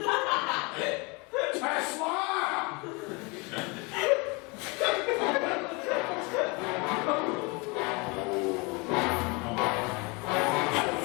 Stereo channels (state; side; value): quieter; right; 28.4 dB